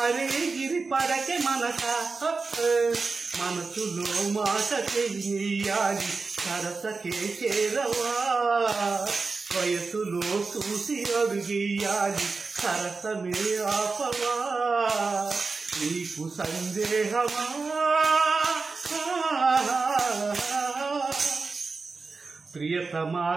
అరే గిరి పడకే మనస, మనసులో మాట చెయ్యాలి సరసకే చేరవా, వయసులో చూసి అడుగేయాలి సరసమే ఆపవా, నీకు సందేహమా. ప్రియతమా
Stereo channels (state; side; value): quieter; left; 4.2 dB